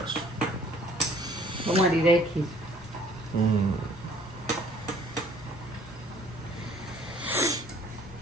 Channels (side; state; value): both; normal; correlation 0.56